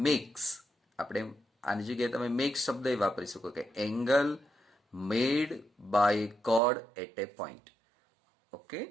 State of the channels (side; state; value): left; drops out; at 6.6 s